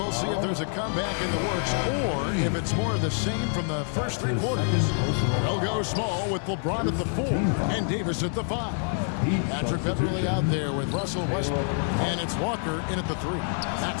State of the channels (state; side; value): silent; right; 60 dB below the other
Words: see if there's a comeback in the works or if it's more of the same from the first three quarters. They'll go small with LeBron at the 4 and Davis at the 5. Patrick Beverly out there with Russell Westbrook. And it's Walker in at the 3.